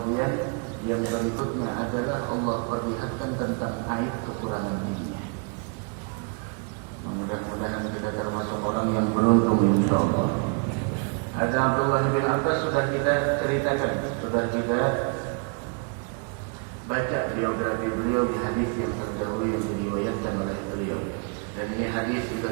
yang berikutnya adalah Allah perlihatkan tentang aib kekurangan dirinya. Mudah-mudahan kita termasuk orang yang beruntung, insyaallah. Ada Abdullah bin Abbas sudah kita ceritakan, sudah kita baca biografi beliau di hadis yang terdahulu yang diriwayatkan oleh beliau. Dan ini hadis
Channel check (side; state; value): left; quieter; 37.1 dB